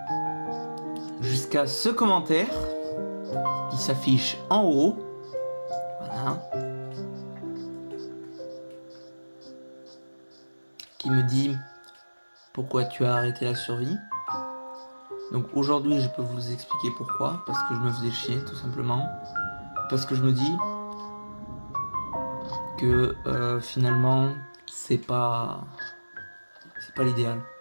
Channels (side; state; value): both; inverted; correlation -1.00